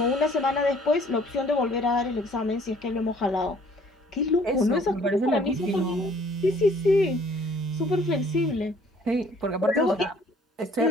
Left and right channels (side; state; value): both; normal; correlation 0.58